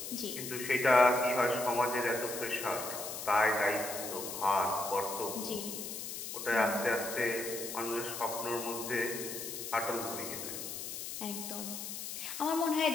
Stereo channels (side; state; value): left; noise; hiss, 7 dB below the sound